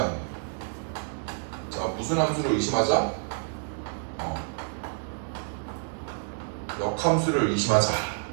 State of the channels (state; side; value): silent; left; 59 dB below the other